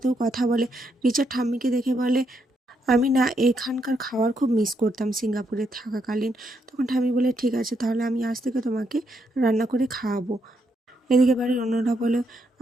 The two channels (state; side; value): normal; both; correlation 0.78